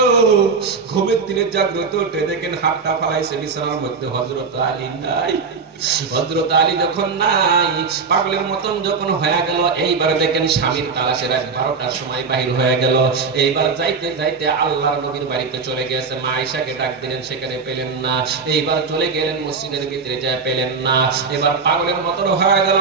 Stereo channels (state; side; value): quieter; left; 5.0 dB